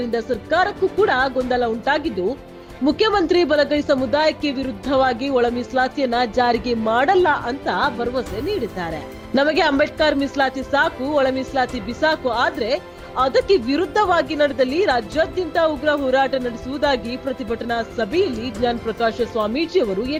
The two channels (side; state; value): both; identical; correlation 1.00